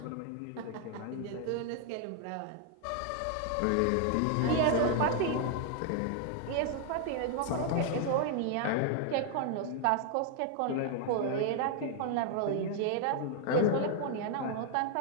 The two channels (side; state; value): both; different; correlation 0.00